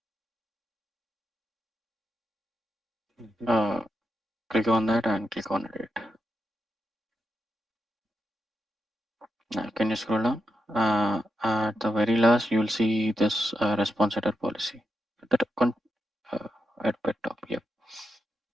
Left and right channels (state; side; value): normal; both; correlation 0.85